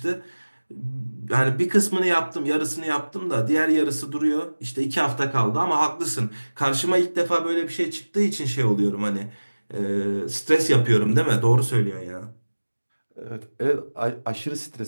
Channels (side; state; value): both; inverted; correlation -1.00